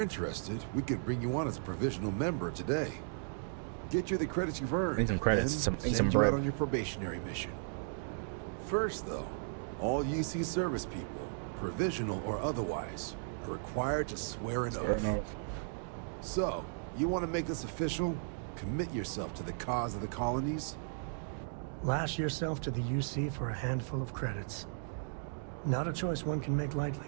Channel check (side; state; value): left; silent; digital silence